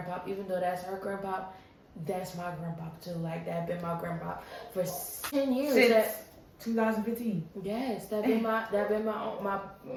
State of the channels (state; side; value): identical; both; correlation 1.00